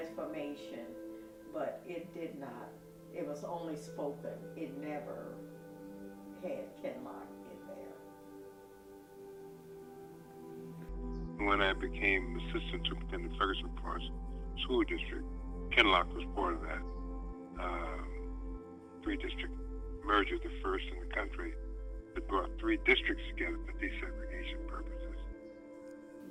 but it did not. It was only spoken. It never had Kinloch in there. When I became assistant superintendent of Ferguson Forest School District, Kinloch was part of that three-district merger, the first in the country that brought three districts together for desegregation purposes.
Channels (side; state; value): both; identical; correlation 1.00